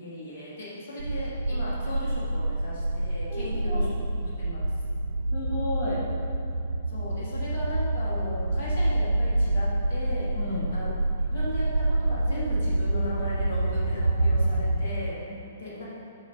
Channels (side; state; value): both; inverted; correlation -0.86